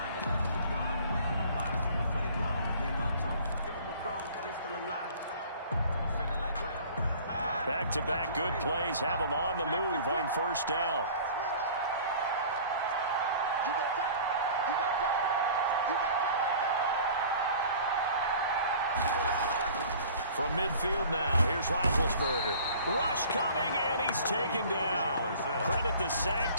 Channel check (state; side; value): inverted; both; correlation -0.47